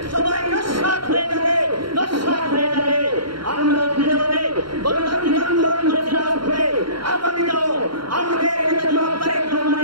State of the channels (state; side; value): late; left; 0.73 ms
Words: সবাই নস্যাৎ হয়ে যাবে, নস্যাৎ হয়ে যাবে। আমরা ফিরে যাবে গণতান্ত্রিক আন্দোলন করে আগামীতেও আমাদের নেতা জনাব তারেক